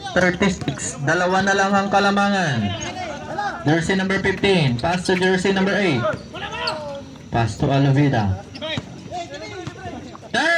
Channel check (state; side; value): identical; both; correlation 1.00